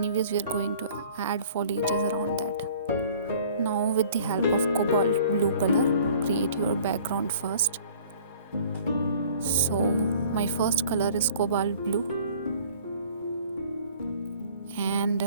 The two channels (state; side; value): inverted; both; correlation -0.51